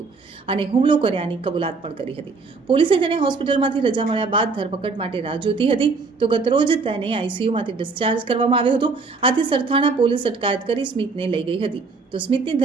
અને હુમલો કર્યાની કબૂલાત પણ કરી હતી। પોલીસે તેને હોસ્પિટલમાંથી રજા મળ્યા બાદ ધરપકડ માટે રાહ જોતી હતી। તો ગતરોજ તેને આઈસીયુમાંથી ડિસ્ચાર્જ કરવામાં આવ્યો હતો। આથી સરથાણા પોલીસ અટકાયત કરી સ્મિતને લઈ ગઈ હતી। તો સ્મિતની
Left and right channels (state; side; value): quieter; left; 4.3 dB